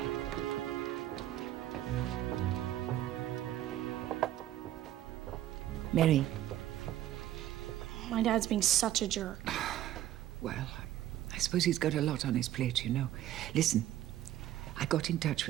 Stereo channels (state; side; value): quieter; left; 13.0 dB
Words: Mary. My dad's being such a jerk. Well, I suppose he's got a lot on his plate, you know. Listen, I got in touch